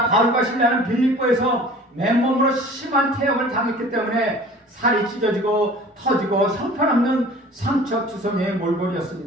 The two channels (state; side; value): normal; both; correlation 0.45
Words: 바울과 실라는 빌립보에서 맨몸으로 심한 태형을 당했기 때문에 살이 찢어지고 터지고 형편없는 상처투성이의